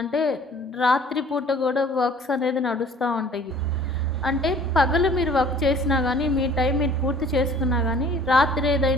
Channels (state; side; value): normal; both; correlation 0.52